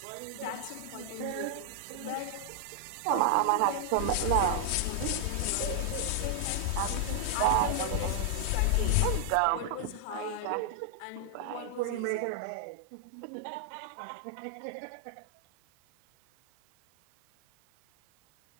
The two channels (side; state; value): both; different; correlation -0.01